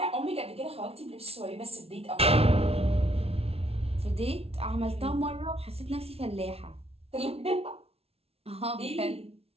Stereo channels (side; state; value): left; late; 0.29 ms